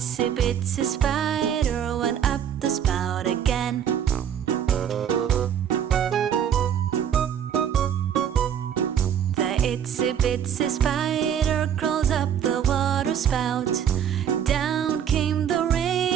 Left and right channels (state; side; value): quieter; left; 8.9 dB